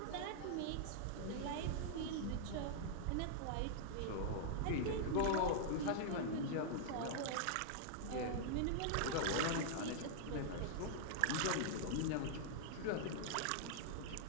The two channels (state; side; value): different; both; correlation -0.01